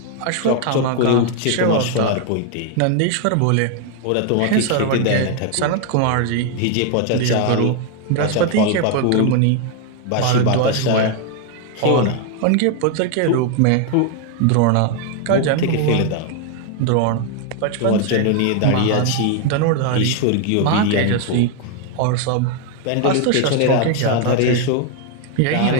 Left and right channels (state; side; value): different; both; correlation 0.01